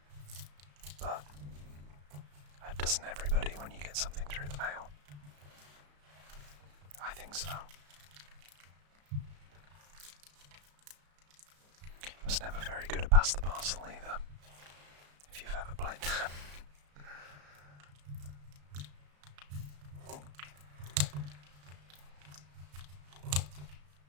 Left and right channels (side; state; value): left; late; 34 ms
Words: But doesn't everybody when you get something through the mail? I think so. I was never very good at pass the parcel either, if you've ever played that.